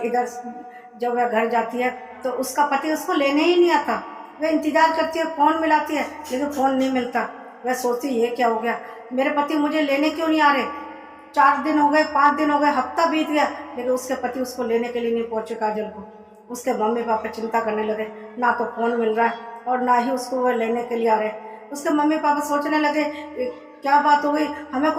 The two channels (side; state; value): both; identical; correlation 1.00